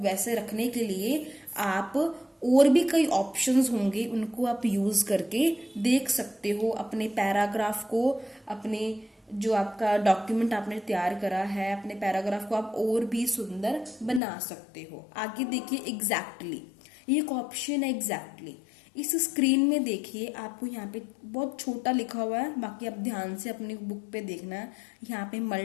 रखने के लिए आप और भी कई ऑप्शंस होंगे, उनको आप यूज करके देख सकते हो. अपने पैराग्राफ को, अपने जो आपका डॉक्यूमेंट आपने तैयार करा है, अपने पैराग्राफ को आप और भी सुंदर बना सकते हो. आगे देखिए एग्जैक्टली, ये एक ऑप्शन है एग्जैक्टली. इस स्क्रीन में देखिए आपको यहाँ पे बहुत छोटा लिखा हुआ है, बाकी आप ध्यान से अपनी बुक पे देखना है. यहाँ पे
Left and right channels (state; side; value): drops out; right; at 14.2 s